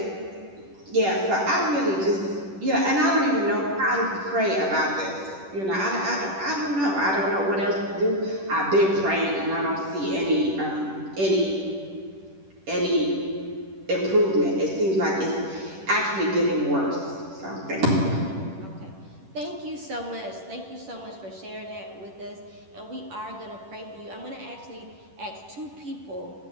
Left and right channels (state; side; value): late; left; 10 ms